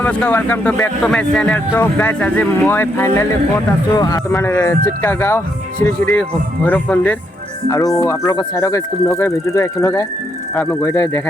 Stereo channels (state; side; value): normal; both; correlation 0.76